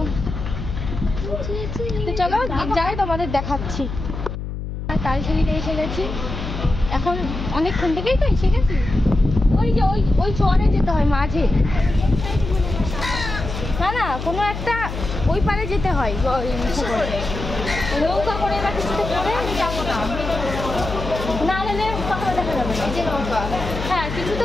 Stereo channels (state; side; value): noise; left; hum, 6 dB below the sound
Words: তো চলো যাই, তোমাদের দেখাচ্ছি। তালসারিতে এসে গেছি, এখন অনেকক্ষণ থেকেই তো এসে গেছি। ওই যে ওই চরে যেতে হয় মাঝে, না না কোনো একটা ওই পারে যেতে হয়, নৌকা করে বা কিছুতে করে যাবো না, না হলে কখনো দেখা যাবে না। হ্যাঁ কিছুতে